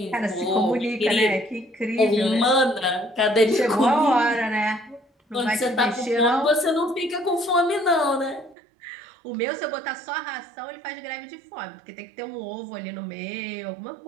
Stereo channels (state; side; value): drops out; left; at 8.6 s